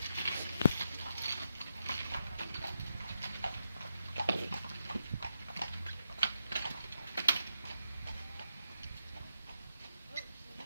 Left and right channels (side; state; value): both; inverted; correlation -0.83